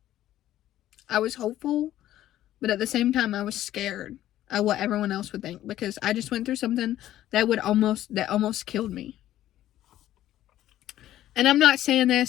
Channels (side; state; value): right; quieter; 13.2 dB